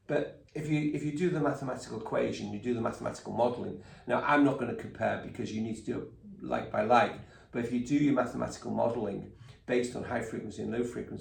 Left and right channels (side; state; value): both; identical; correlation 1.00